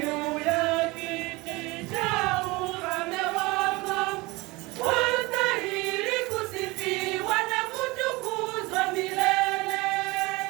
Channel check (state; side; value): quieter; left; 23.0 dB